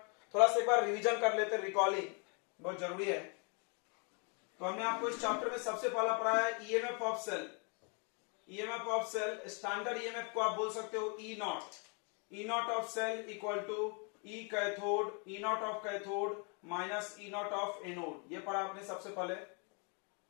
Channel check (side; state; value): right; quieter; 36.3 dB